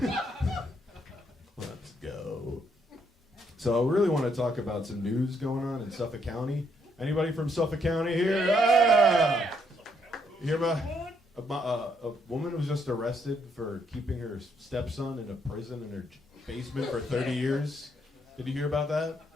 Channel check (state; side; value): normal; both; correlation 0.73